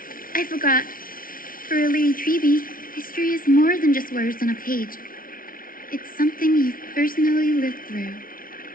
I forgot. For a Lady Treby, history is more than just words on a page. It's something you've personally lived through.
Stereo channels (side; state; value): right; late; 0.41 ms